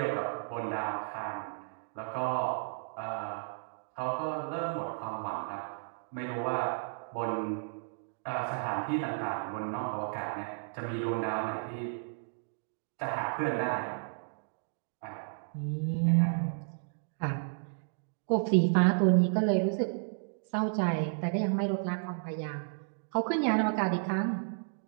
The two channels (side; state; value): left; silent; digital silence